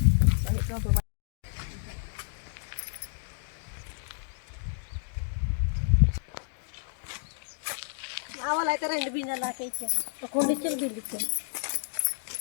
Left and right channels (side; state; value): right; silent; digital silence